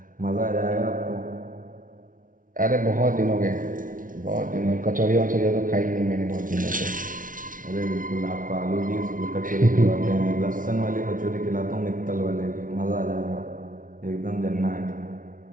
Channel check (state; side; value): late; left; 0.39 ms